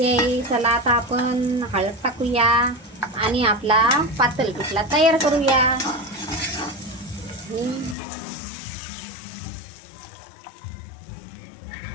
आहे. चला आता आपण हळद टाकूया आणि आपला पातळ पिठला तयार करूया.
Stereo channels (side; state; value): right; drops out; at 8.0 s